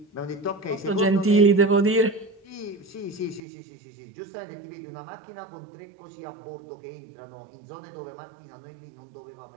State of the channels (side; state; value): left; drops out; at 3.4 s